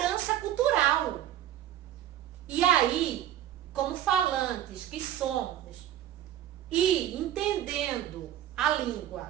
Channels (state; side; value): quieter; left; 11.8 dB